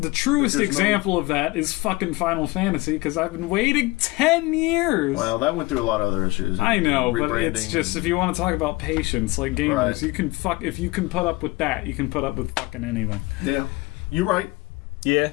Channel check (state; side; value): quieter; right; 22.0 dB